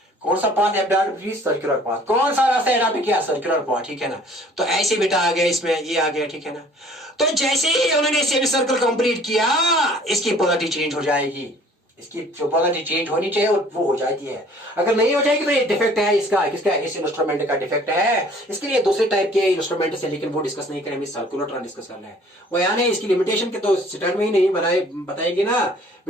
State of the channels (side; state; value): both; normal; correlation 0.54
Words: कौन सा पाथ अडॉप्ट किया, सर्कुलर पाथ, कौन सा रास्ता अडॉप्ट किया, सर्कुलर पाथ, ठीक है ना। तो ऐसे बेटा आ गया, इसमें ये आ गया, ठीक है ना। तो जैसे ही उन्होंने सेमी सर्कल कंप्लीट किया, इसकी पोलैरिटी चेंज हो जाएगी, इसकी जो पोलैरिटी चेंज होनी चाहिए वो हो जाती है, अगर नहीं हो जाएगी तो ये डिफेक्ट है इसका, किसका, इस इंस्ट्रूमेंट का डिफेक्ट है। इसके लिए दूसरे टाइप के इंस्ट्रूमेंट से, लेकिन वो डिस्कस नहीं करेंगे, सर्कुलर डिस्कस करना है। वो यानी इसकी लिमिटेशन के तो स्टार्ट में ही नहीं बताएंगे ना